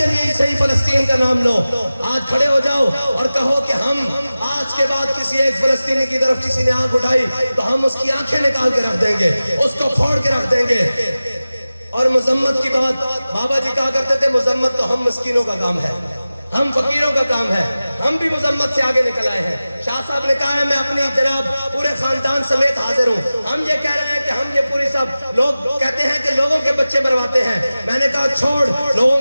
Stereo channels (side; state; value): both; inverted; correlation -0.96